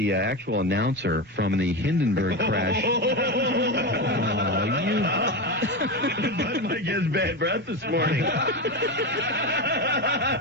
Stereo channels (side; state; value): both; normal; correlation 0.18